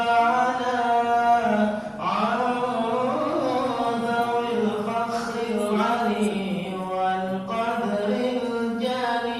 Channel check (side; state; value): both; identical; correlation 1.00